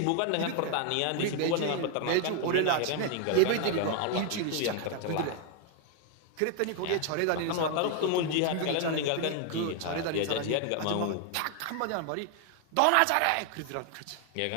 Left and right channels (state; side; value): different; both; correlation 0.00